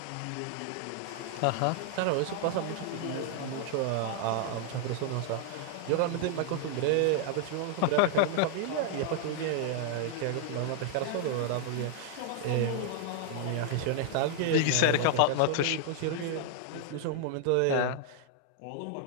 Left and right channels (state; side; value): different; both; correlation 0.00